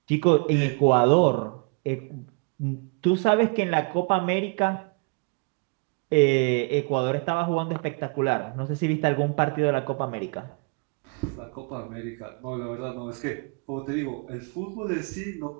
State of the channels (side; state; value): left; quieter; 34.3 dB